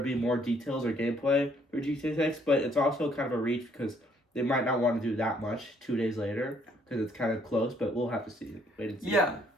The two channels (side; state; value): both; normal; correlation 0.66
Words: be more details or gameplay for GTA 6, but it's also kind of a reach because they might not want to do that much 2 days later because it's kind of close, but we'll have to see. Wait and see. Yeah,